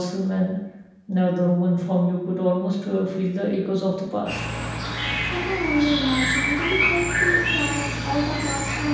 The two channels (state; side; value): identical; both; correlation 1.00